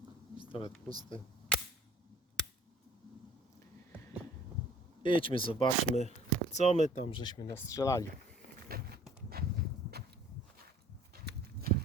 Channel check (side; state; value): both; normal; correlation 0.52